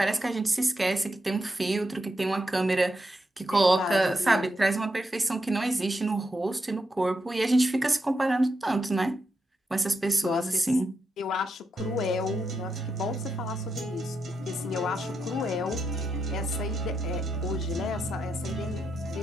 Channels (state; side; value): normal; both; correlation 0.84